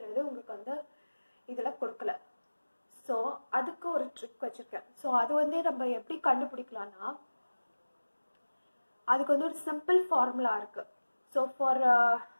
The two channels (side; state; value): both; inverted; correlation -1.00